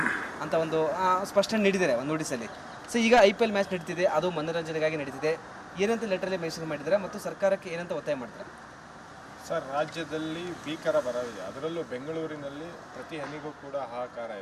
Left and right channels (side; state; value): both; identical; correlation 1.00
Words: ಅಂತ ಒಂದು ಸ್ಪಷ್ಟನೆ ನೀಡಿದ್ದಾರೆ ಒಂದು ನೋಟಿಸಲ್ಲಿ. ಸೊ ಈಗ IPL ಮ್ಯಾಚ್ ನಡೀತಿದೆ, ಅದು ಮನೋರಂಜನೆಗಾಗಿ ನಡೀತಿದೆ. ಏನಂತ ಲೆಟ್ರಲ್ಲಿ ಮೆನ್ಷನ್ ಮಾಡಿದ್ದಾರೆ ಮತ್ತು ಸರ್ಕಾರಕ್ಕೆ ಏನಂತ ಒತ್ತಾಯ ಮಾಡ್ತಾರೆ? ಸರ್, ರಾಜ್ಯದಲ್ಲಿ ಭೀಕರ ಬರವಿದೆ. ಅದರಲ್ಲೂ ಬೆಂಗಳೂರಿನಲ್ಲಿ ಪ್ರತಿ ಹನಿಗೂ ಕೂಡ ಹಾಹಾಕಾರ